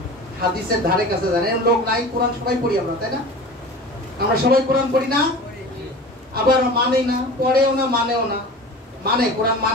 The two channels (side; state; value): both; normal; correlation 0.36